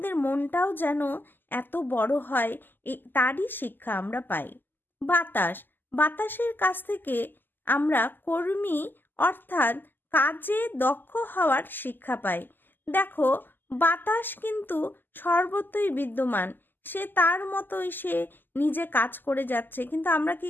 মনটাও যেন এত বড় হয়, তারই শিক্ষা আমরা পাই। বাতাসের কাছ থেকে আমরা কর্মী অর্থাৎ কাজে দক্ষ হওয়ার শিক্ষা পাই। দেখো, বাতাস কিন্তু সর্বত্রই বিদ্যমান, সে তার মতোই সে নিজে কাজ করে যাচ্ছে, কিন্তু আমরা কি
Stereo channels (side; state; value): right; late; 0.091 ms